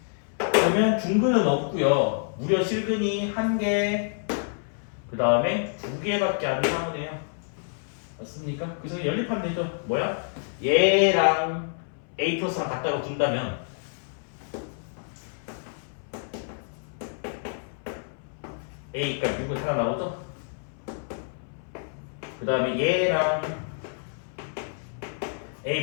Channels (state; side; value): silent; right; 60 dB below the other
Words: 그러면 중근은 없고요. 무려 실근이 1개 그 다음에 2개밖에 안 나오네요. 맞습니까? 그래서 연립하면 되죠. 뭐야? 얘랑 A 플러스랑 같다고 둔다면 A가 6은 하나 나오죠? 그 다음에 얘랑